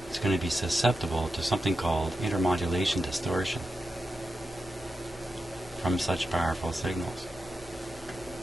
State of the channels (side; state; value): both; normal; correlation 0.89